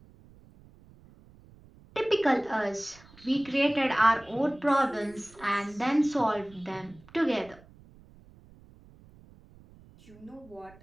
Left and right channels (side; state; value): right; noise; rumble, 24 dB below the sound